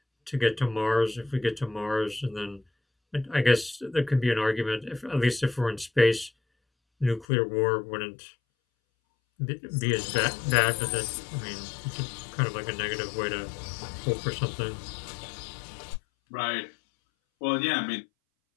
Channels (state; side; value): drops out; right; at 7.2 s